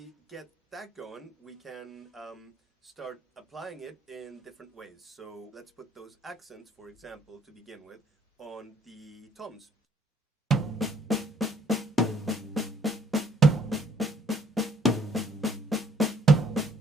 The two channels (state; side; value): normal; both; correlation 0.63